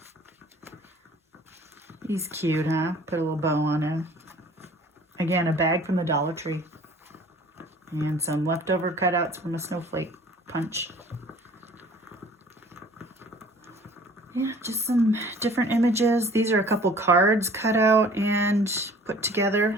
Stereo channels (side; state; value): both; normal; correlation 0.50